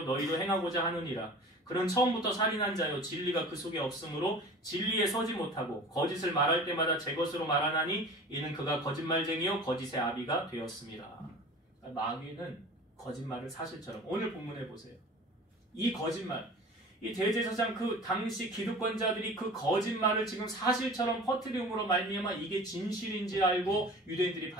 너희도 행하고자 하느니라. 그는 처음부터 살인한 자요 진리가 그 속에 없으므로 진리에 서지 못하고 거짓을 말할 때마다 제 것으로 말하나니 이는 그가 거짓말쟁이요 거짓의 아비가 되었습니다. 마귀는 거짓말을 사실처럼, 오늘 본문에 보세요. 이 거짓말, 이 대제사장 그 당시 기득권자들이 그 거짓말을 지금 사실처럼 퍼뜨림으로 말미암아 이게 진실인지 알고 유대인들이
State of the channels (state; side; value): normal; both; correlation 0.40